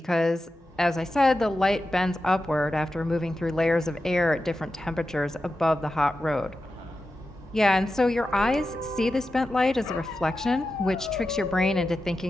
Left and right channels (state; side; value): normal; both; correlation 0.91